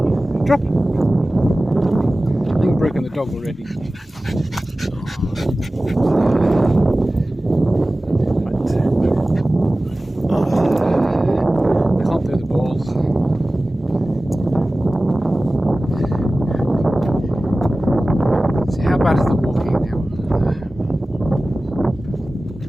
Drop. I think I've broken the dog already. Bad is the walking now.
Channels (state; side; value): normal; both; correlation 0.97